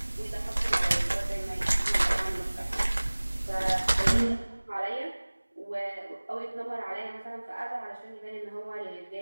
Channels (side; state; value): both; inverted; correlation -1.00